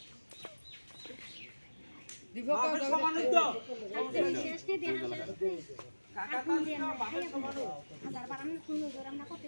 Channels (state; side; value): inverted; both; correlation -1.00